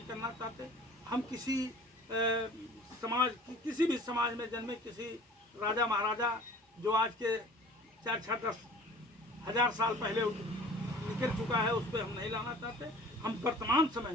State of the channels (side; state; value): both; normal; correlation 0.46